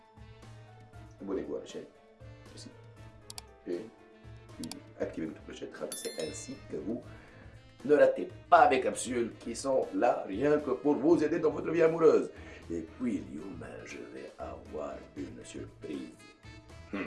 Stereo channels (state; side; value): identical; both; correlation 1.00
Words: abonnez-vous à la chaîne, ici, et puis activez votre clochette, c'est ainsi que vous ne ratez pas mes capsules qui sont là rien que pour vous aider dans votre vie amoureuse. Et puis, Lyouma, je vais avoir une surprise.